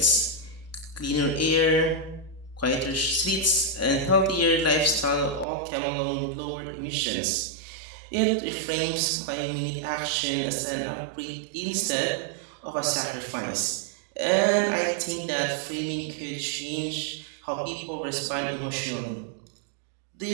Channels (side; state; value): left; drops out; at 5.5 s